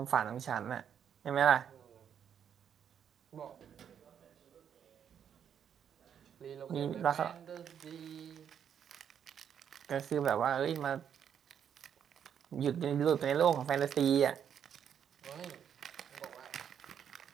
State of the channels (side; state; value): left; quieter; 8.5 dB